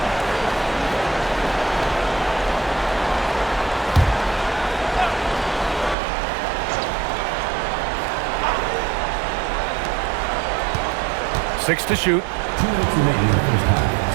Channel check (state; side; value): drops out; left; at 6.0 s